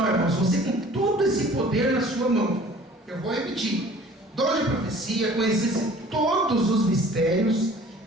irmãos, você com todo esse poder na sua mão. Eu vou repetir: dom de profecia, conhecesse todos os mistérios,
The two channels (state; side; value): normal; both; correlation 0.49